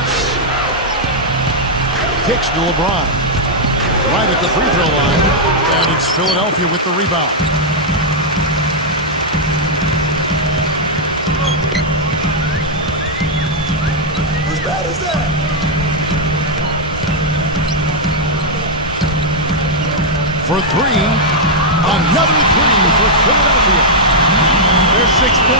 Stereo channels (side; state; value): both; normal; correlation -0.04